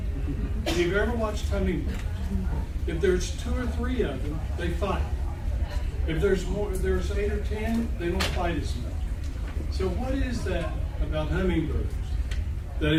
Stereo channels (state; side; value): identical; both; correlation 1.00